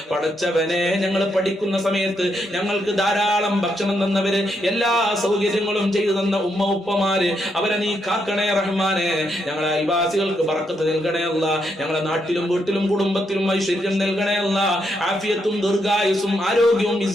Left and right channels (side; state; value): both; normal; correlation 0.79